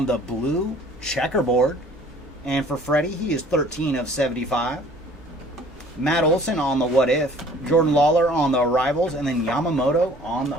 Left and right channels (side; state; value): both; normal; correlation 0.52